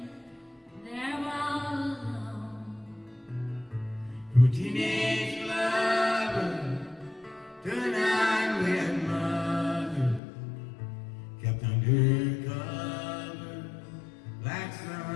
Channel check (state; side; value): drops out; right; at 10.2 s